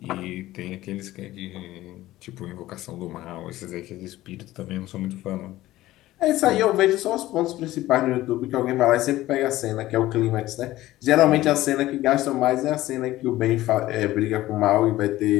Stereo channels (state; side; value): quieter; right; 16.1 dB